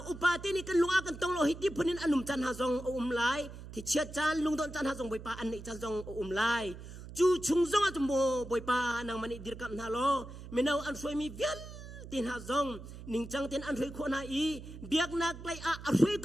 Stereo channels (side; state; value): right; noise; hum, 13 dB below the sound